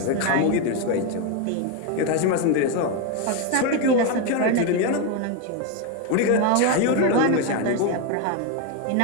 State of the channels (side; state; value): both; different; correlation 0.02